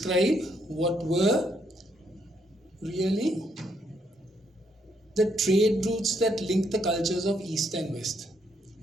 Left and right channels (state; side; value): normal; both; correlation 0.73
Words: what were really the trade routes that linked the cultures of East and West.